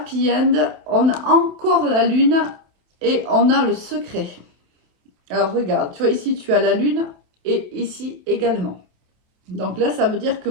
end, on a encore la lune et on a le secret. Alors regarde, tu vois ici tu as la lune et ici également. Donc là, ça veut dire que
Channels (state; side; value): late; left; 28 ms